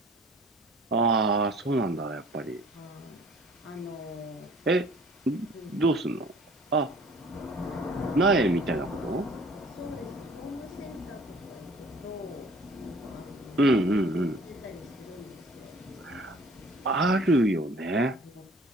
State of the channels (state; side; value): normal; both; correlation 0.52